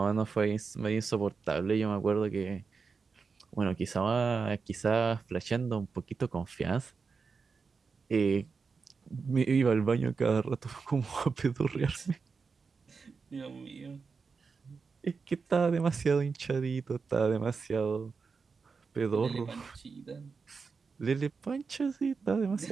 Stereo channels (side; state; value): left; quieter; 5.0 dB